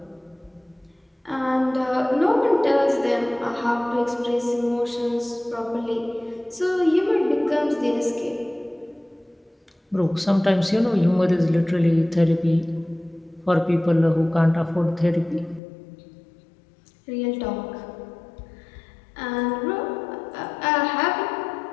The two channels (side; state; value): right; drops out; at 15.6 s